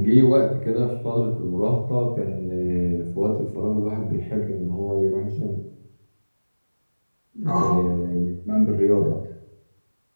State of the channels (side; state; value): both; inverted; correlation -1.00